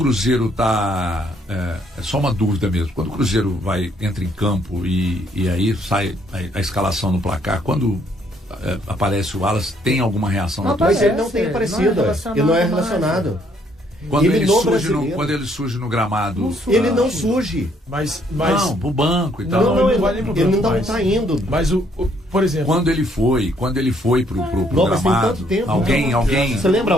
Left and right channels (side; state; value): both; normal; correlation 0.68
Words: tá... É só uma dúvida mesmo. Quando o Cruzeiro entra em campo e aí sai a escalação no placar, quando aparece o Wallace, tem alguma reação? Mas ele não tem aparecido. Ele não é relacionado. Quando ele surge no gramado... Ele não surge. Mas não, pro banco e tal. Não, ele não tá indo. Mas, por exemplo... Quando ele foi pro mas tem gramado... tanto tempo. Alguém... Você lembra